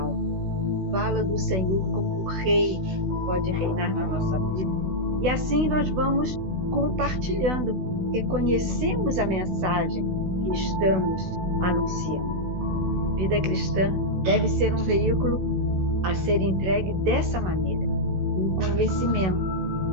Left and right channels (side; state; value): left; late; 16 ms